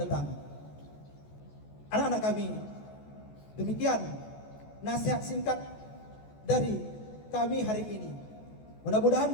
datang. Anak-anak kami, demikian nasihat singkat dari kami hari ini. Mudah-mudahan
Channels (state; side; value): late; right; 14 ms